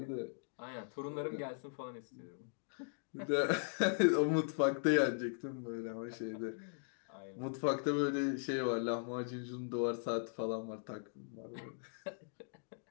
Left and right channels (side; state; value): right; silent; digital silence